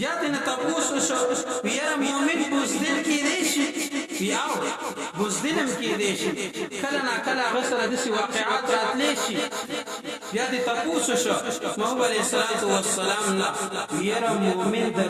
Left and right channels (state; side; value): identical; both; correlation 1.00